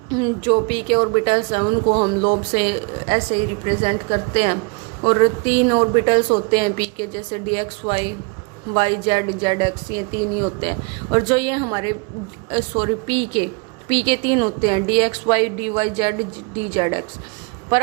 जो पी के ऑर्बिटल्स हैं उनको हम लोब से ऐसे ही रिप्रेजेंट करते हैं। और 3 ऑर्बिटल्स होते हैं पी के, जैसे d x y, y z, z x, ये 3 ही होते हैं। और जो ये हमारे पी के 3 होते हैं, d x y, d y z, d z x. पर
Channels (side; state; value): left; quieter; 32.6 dB